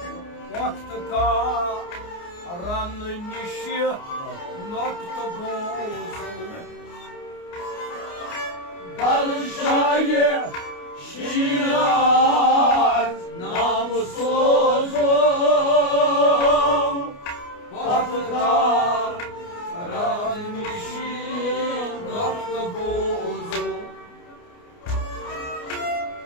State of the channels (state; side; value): late; right; 29 ms